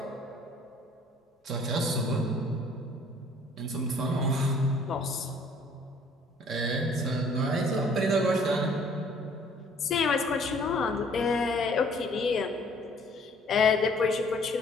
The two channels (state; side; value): normal; both; correlation 0.57